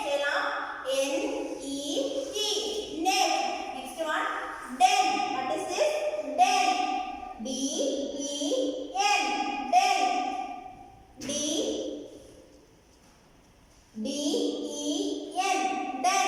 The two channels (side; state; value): both; identical; correlation 1.00